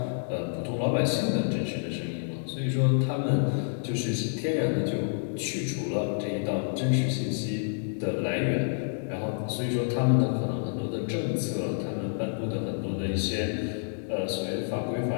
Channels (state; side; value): silent; right; digital silence